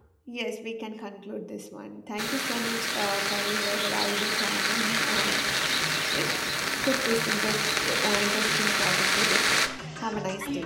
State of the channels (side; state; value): both; identical; correlation 1.00